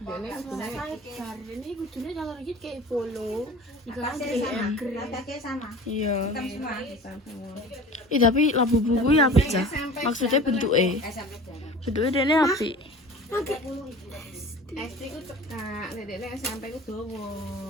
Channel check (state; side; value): normal; both; correlation 0.40